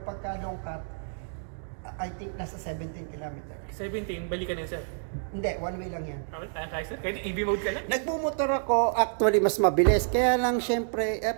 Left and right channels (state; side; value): silent; left; digital silence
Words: long cut, I think nasa 17 km. 17, balikan yan sir? Hindi, one way lang yan. Kahit EV mode ka lang? Nagbumotor ako, actually mas mabilis. Kaya lang syempre,